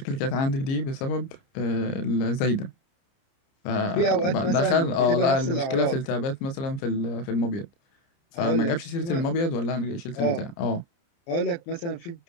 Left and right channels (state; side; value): late; right; 29 ms